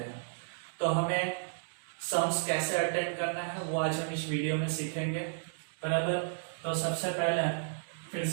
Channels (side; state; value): left; silent; digital silence